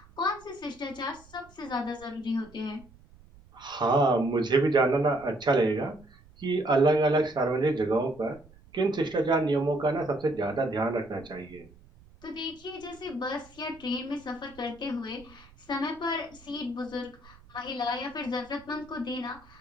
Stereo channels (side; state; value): right; noise; rumble, 25 dB below the sound